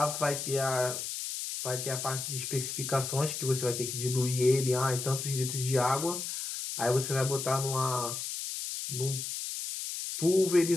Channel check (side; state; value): left; noise; hiss, 5 dB below the sound